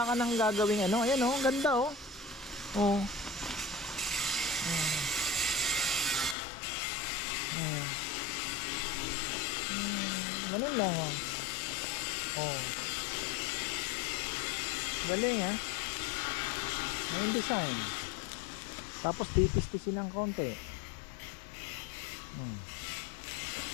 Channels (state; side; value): drops out; right; at 6.4 s